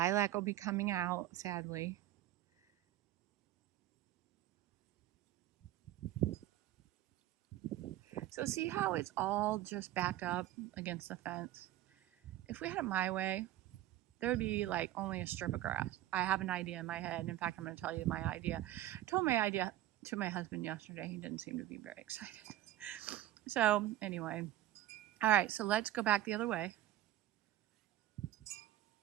will be coming out, sadly. So see how it's all just backed up against the fence? If we had it my way, there would be like only a strip of grass. I have an idea in my head. In fact, I'm going to tell you my idea. I told my idea to my husband yesterday. He didn't seem to be very excited. So anyway, all right, so let's go back the other way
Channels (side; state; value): left; quieter; 13.7 dB